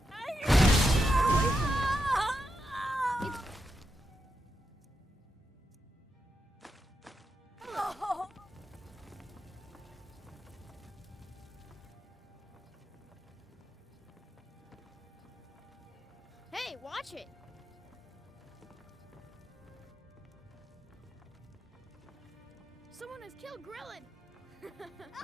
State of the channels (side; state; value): both; normal; correlation 0.85